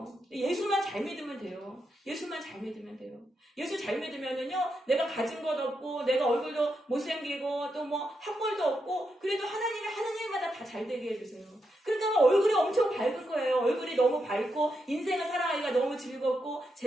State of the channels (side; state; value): both; normal; correlation 0.83